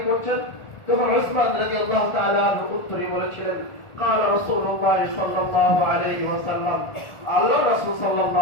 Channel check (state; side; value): late; right; 1.4 ms